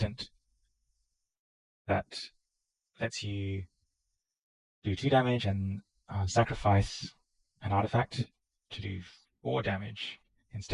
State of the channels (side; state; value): both; identical; correlation 1.00